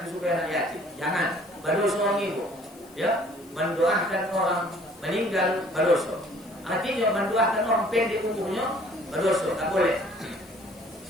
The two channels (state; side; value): noise; left; hiss, 25 dB below the sound